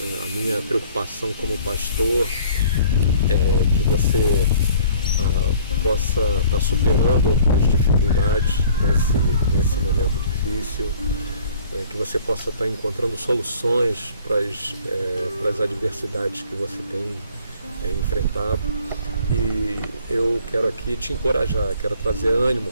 A minha preocupação como pastor é que você possa estar superando as dificuldades nesse momento difícil, que você possa estar encontrando soluções para as adversidades que você tem enfrentado. E eu quero aqui te encorajar, quero trazer ânimo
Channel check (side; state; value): both; inverted; correlation -0.54